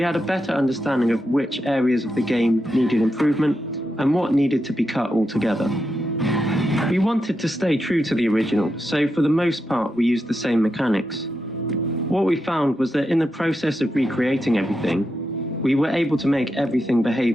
had a better understanding of which areas of the game needed improvement, and what needed to be cut altogether. We wanted to stay true to the original, so for the most part we used the same mechanics. What we found was that in the process of recreating everything, we were able to make everything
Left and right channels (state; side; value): normal; both; correlation 0.86